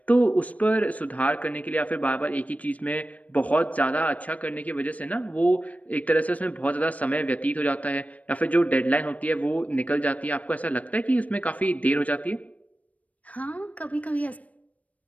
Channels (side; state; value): right; late; 0.069 ms